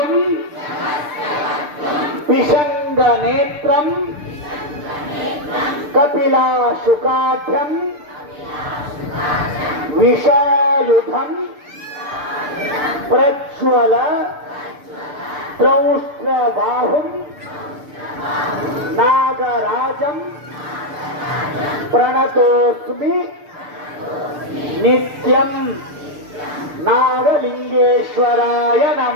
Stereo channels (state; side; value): late; left; 6.8 ms